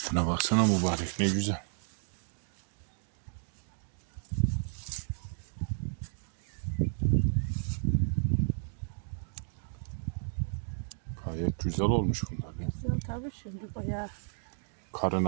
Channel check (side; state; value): left; silent; digital silence